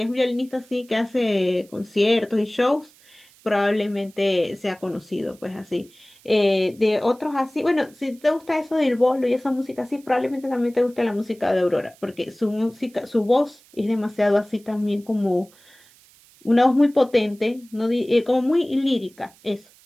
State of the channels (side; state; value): right; noise; hiss, 28 dB below the sound